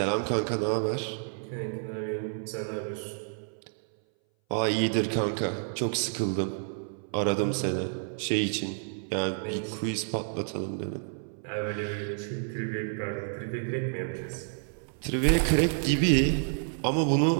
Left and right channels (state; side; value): silent; left; 58 dB below the other